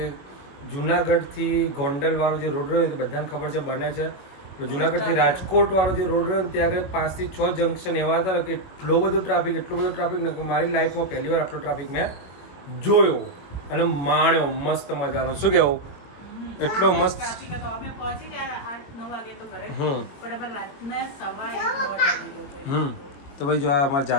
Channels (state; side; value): late; right; 22 ms